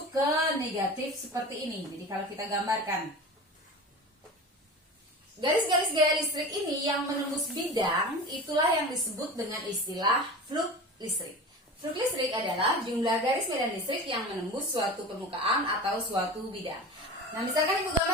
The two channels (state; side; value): normal; both; correlation 0.33